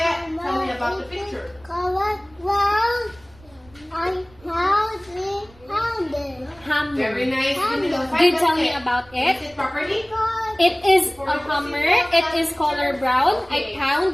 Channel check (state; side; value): noise; right; rumble, 27 dB below the sound